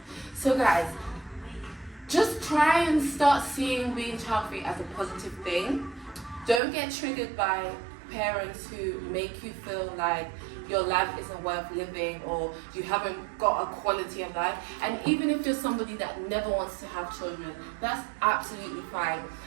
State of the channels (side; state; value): left; drops out; at 6.6 s